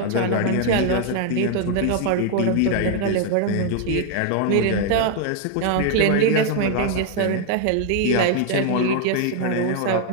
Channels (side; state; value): both; different; correlation 0.00